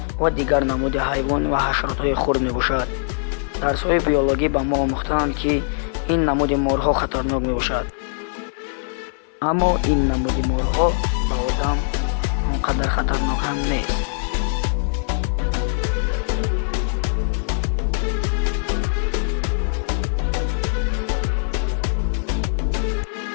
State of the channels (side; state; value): right; silent; 57 dB below the other